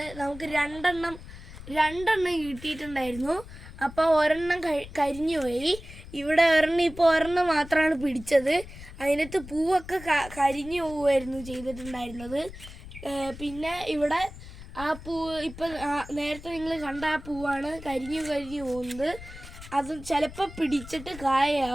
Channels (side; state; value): left; noise; rumble, 15 dB below the sound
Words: നമുക്ക് രണ്ടെണ്ണം കിട്ടിയിട്ടുണ്ടായിരുന്നു. അപ്പോൾ ഒരെണ്ണം കരിഞ്ഞു പോയി. ഇവിടെ ഒരെണ്ണം മാത്രമാണ് പിടിച്ചത്. അതിനകത്ത് പൂവൊക്കെ കരിഞ്ഞു പോവുമായിരുന്നു ചെയ്തിട്ടുണ്ടായിരുന്നത്. പിന്നെ ഇവിടെ ആ പൂവ് ഇപ്പം നേരത്തെ നിങ്ങൾ കണ്ട ആ പൂവാണ് കരിഞ്ഞു പോകുന്നത്. അത് ചിലപ്പോൾ പിടിച്ചിട്ട്